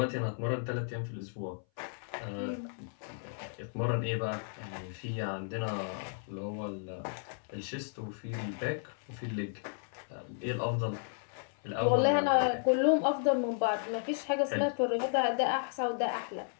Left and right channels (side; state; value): right; silent; 55 dB below the other